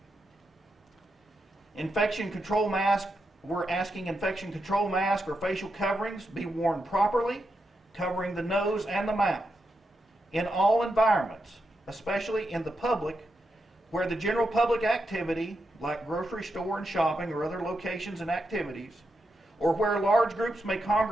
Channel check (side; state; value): both; normal; correlation 0.85